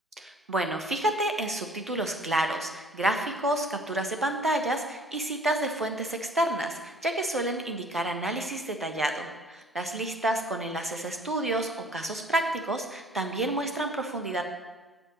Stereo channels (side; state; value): both; normal; correlation 0.53